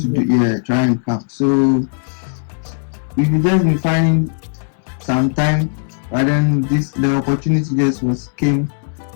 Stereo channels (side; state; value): right; silent; digital silence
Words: do, try and come. So we've just been finding some time, but then the opportunity just came.